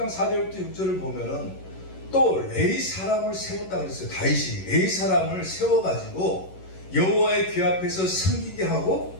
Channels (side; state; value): right; late; 11 ms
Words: 4절부터 6절을 보면은 또 레위 사람을 세웠다 그랬어요. 다윗이 레위 사람을 세워가지고 여호와의 귀 앞에서 섬기게 하고